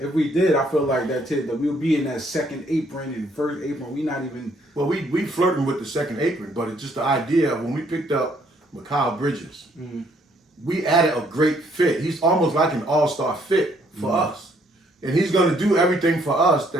we did, I feel like that we'll be in that second apron and first apron. We not even. Well, we flirting with the second apron, but it's just the idea of when we picked up Mikal Bridges, we added a great fit. He's almost like an all-star fit for us. And he's going to do everything for us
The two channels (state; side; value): normal; both; correlation 0.66